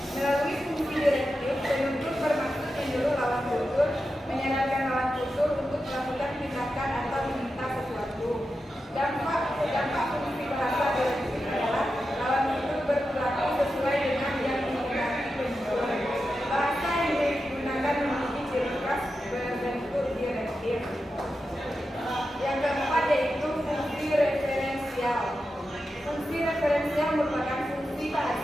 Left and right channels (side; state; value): both; normal; correlation 0.90